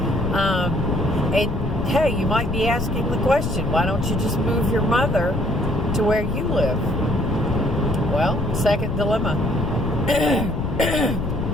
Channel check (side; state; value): left; noise; rumble, 2 dB below the sound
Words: hey, you might be asking the question, why don't you just move your mother to where you live? Well, second dilemma.